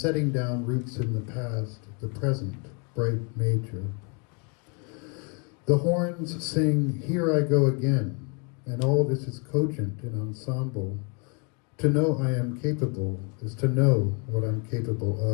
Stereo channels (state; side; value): quieter; right; 35.5 dB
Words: down roots in the past, the present, bright major. The horns sing, here I go again, and all this is cogent in ensemble. To know I am capable is to know what I'm capable